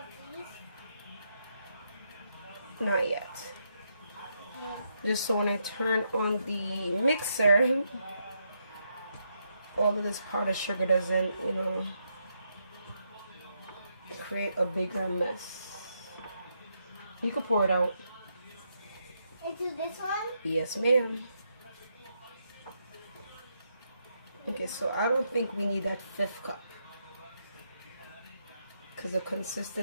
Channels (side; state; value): both; inverted; correlation -0.79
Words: not yet. Just so when I turn on the mixer, all of this powdered sugar doesn't, you know, create a bigger mess. You can pour it out. Into this one? Yes, ma'am. Okay, so I don't think we need that 5th cup because the